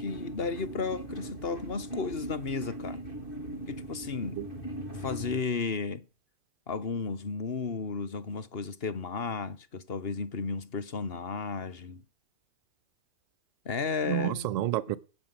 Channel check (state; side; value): late; right; 2.8 ms